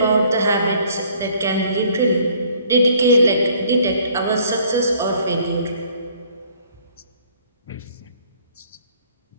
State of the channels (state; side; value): inverted; both; correlation -0.59